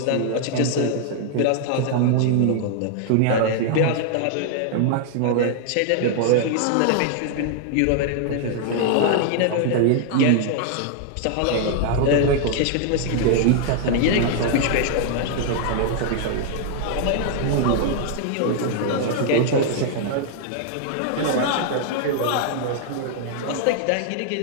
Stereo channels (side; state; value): both; different; correlation -0.01